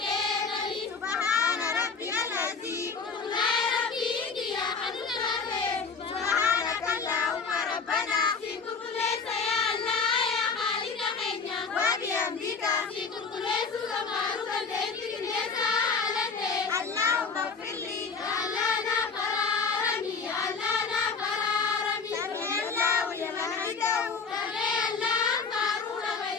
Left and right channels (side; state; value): right; quieter; 5.1 dB